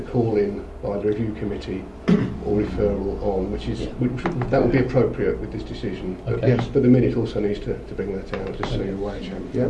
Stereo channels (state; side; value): identical; both; correlation 1.00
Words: call-in by the review committee or referral on, which that would be appropriate with this decision. But, Okay. yes, but the minute also needs to bring that out, just so you're aware, Chairman. Yeah.